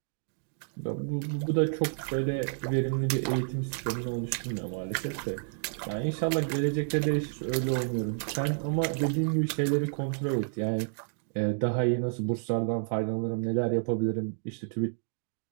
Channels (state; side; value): silent; left; digital silence